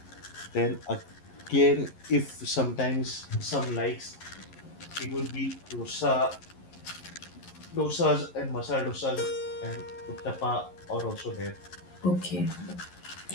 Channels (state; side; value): late; right; 11 ms